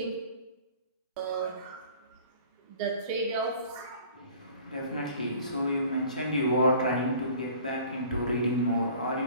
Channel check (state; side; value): inverted; both; correlation -0.48